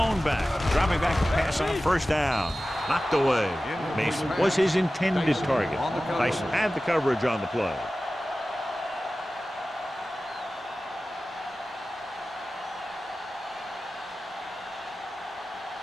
back, dropping back to pass on first down. Knocked away. Mason was his intended target. Tyson had the coverage on the play.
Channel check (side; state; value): both; normal; correlation 0.95